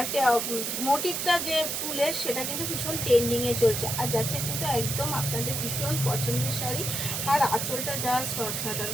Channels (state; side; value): noise; right; hiss, 2 dB below the sound